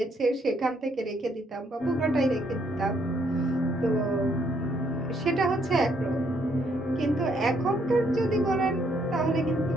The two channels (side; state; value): both; normal; correlation 0.70